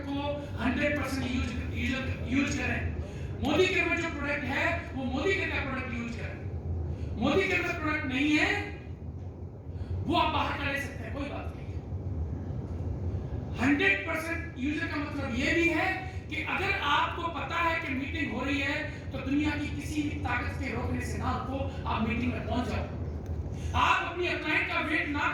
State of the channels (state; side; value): identical; both; correlation 1.00